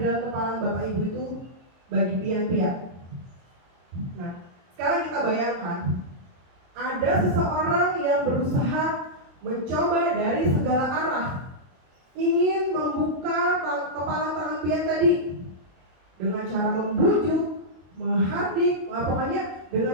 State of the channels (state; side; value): late; left; 22 ms